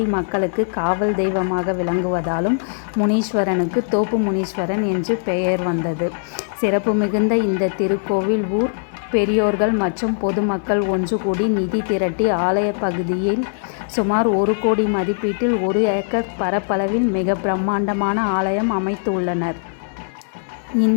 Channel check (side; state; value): right; silent; 66 dB below the other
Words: மக்களுக்கு காவல் தெய்வமாக விளங்குவதாலும் முனீஸ்வரனுக்கு தோப்பு முனீஸ்வரன் என்று பெயர் வந்தது. சிறப்பு மிகுந்த இந்த திருக்கோவில் ஊர் பெரியோர்கள் மற்றும் பொதுமக்கள் ஒன்று கூடி நிதி திரட்டி ஆலய பகுதியில் சுமார் 1 கோடி மதிப்பீட்டில் 1 ஏக்கர் பரப்பளவில் மிக பிரம்மாண்டமான ஆலயம் அமைத்துள்ளனர்.